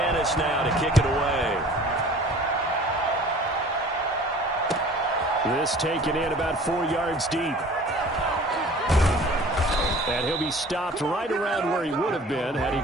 now to kick it away. This taken in about 4 yards deep. And he'll be stopped right around where he would have been had he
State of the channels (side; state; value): both; normal; correlation 0.47